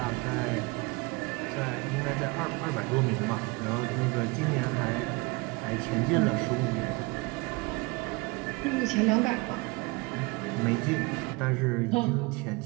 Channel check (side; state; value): left; quieter; 25.9 dB